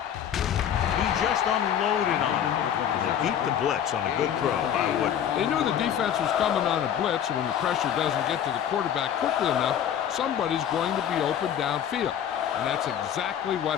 He just unloaded on it. And they beat the blitz on a good throw by Wood. They knew the defense was coming on a blitz, and when the pressure doesn't get to the quarterback quickly enough, somebody's going to be open downfield. And that's exactly what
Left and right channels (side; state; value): right; quieter; 9.5 dB